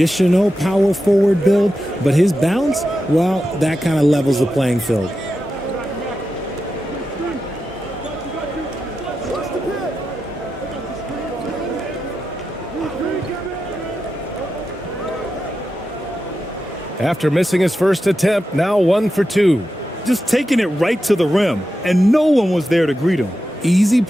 power forward build, but his bounce, well, that kind of levels the playing field. After missing his first attempt, now 1 for 2. Just taking it right to the rim, and no one was there to greet him. Easy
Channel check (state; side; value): normal; both; correlation 0.89